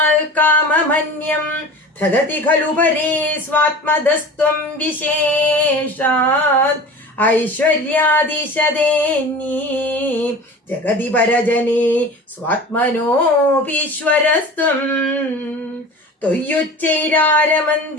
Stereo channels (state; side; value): normal; both; correlation 0.36